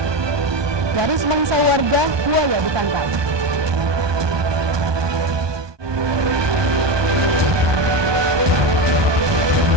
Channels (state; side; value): late; left; 1.2 ms